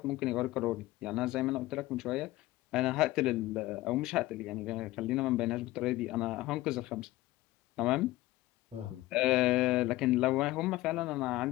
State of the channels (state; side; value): quieter; right; 17.7 dB